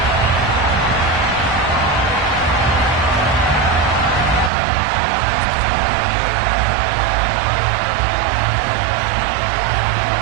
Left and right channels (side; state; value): left; drops out; at 4.5 s